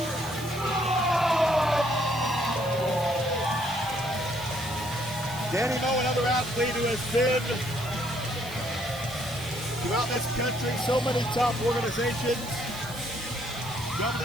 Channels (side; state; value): right; noise; hiss, 16 dB below the sound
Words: Danny Moe, another athlete who has been throughout this country, so many top organizations,